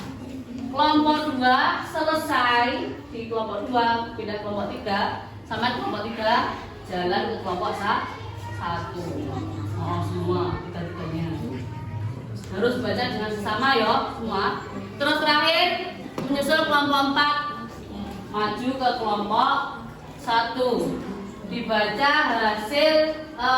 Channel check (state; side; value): identical; both; correlation 1.00